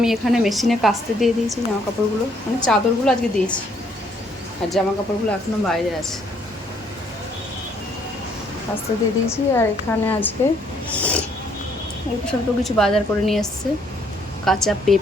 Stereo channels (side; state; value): both; normal; correlation 0.67